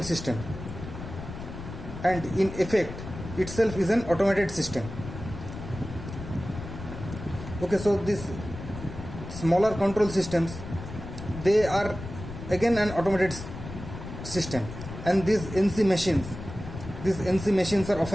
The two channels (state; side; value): noise; left; rumble, 10 dB below the sound